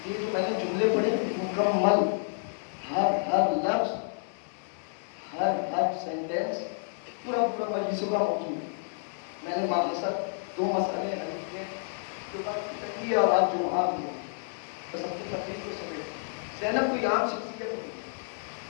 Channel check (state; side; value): silent; right; digital silence